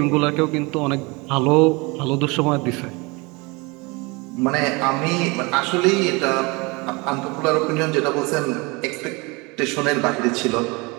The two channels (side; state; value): left; quieter; 26.7 dB